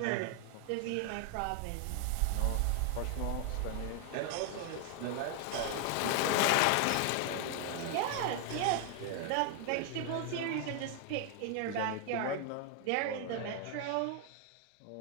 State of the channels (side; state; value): both; different; correlation 0.00